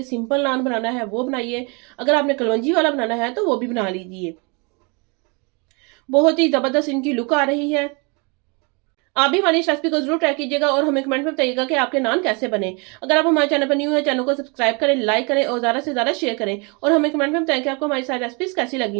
सिंपल नान बनाना है वो बनाइए, अगर आपने कलवंजी वाला बनाना है तो वो भी बना लीजिए। बहुत ही ज़बरदस्त इनकी लुक आ रही है। आप भी हमारी इस रेसिपी को जरूर ट्राई कीजिएगा और हमें कमेंट में बताइएगा कि आपके नान कैसे बने। अगर आप हमारे चैनल पर न्यू है, चैनल को सब्सक्राइब करें, लाइक करें और ज़्यादा से ज़्यादा शेयर करें और हमें कमेंट में बताएं कि आपको हमारी सारी रेसिपीज कैसी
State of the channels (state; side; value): quieter; left; 31.7 dB